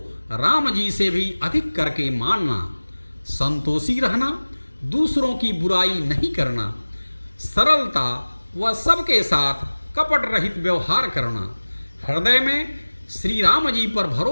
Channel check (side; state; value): both; inverted; correlation -1.00